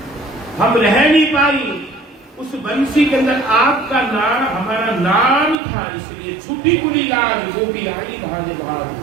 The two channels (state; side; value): drops out; left; at 5.6 s